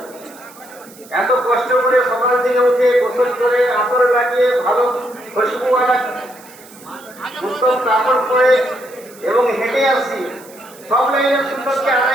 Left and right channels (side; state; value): right; noise; hiss, 22 dB below the sound